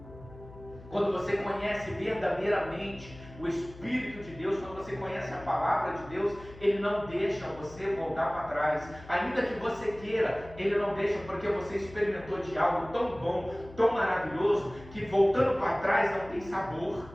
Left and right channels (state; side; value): noise; left; hum, 18 dB below the sound